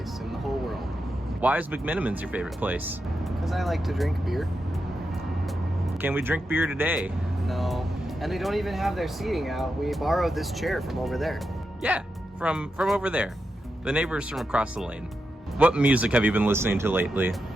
in the whole world. Why is McMiniman's your favorite place? Because I like to drink beer. Can we drink beer today? No, and they don't even have their seating out. We borrowed this chair from over there. Yeah, from over there. The neighbors from across the lane. What music have you been listening to lately?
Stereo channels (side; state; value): both; normal; correlation 0.87